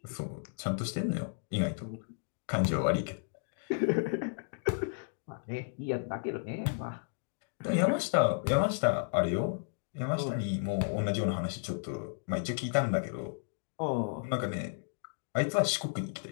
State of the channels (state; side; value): silent; right; digital silence